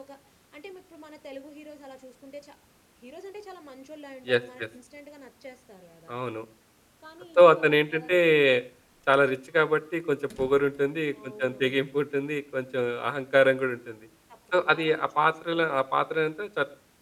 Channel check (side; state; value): both; identical; correlation 1.00